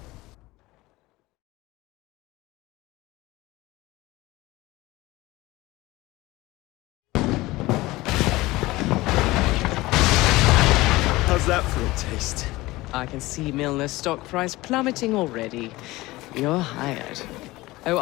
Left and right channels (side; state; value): right; quieter; 19.5 dB